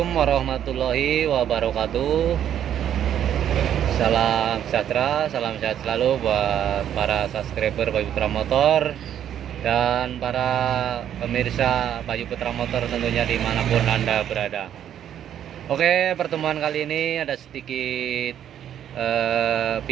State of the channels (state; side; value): quieter; left; 10.1 dB